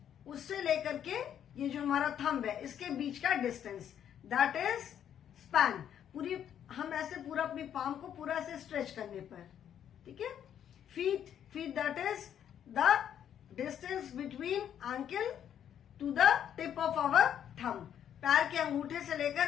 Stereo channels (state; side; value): quieter; right; 9.6 dB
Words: उससे लेकर के ये जो हमारा थंब है इसके बीच का डिस्टेंस, दैट इज स्पैन. पूरी हम ऐसे पूरा अपनी पाम को पूरा ऐसे स्ट्रेच करने पर. ठीक है. Feet that is the distance between ankle to the tip of our thumb. पैर के अंगूठे से लेकर